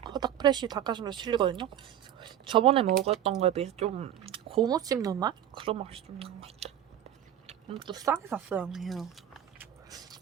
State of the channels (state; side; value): quieter; left; 10.8 dB